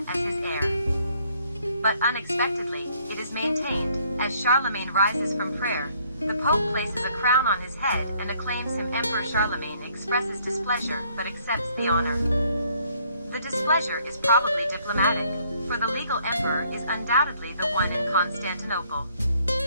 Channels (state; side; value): inverted; both; correlation -0.65